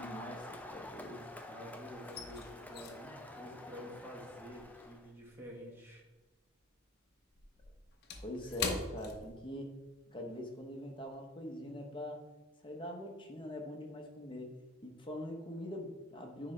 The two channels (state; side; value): normal; both; correlation 0.44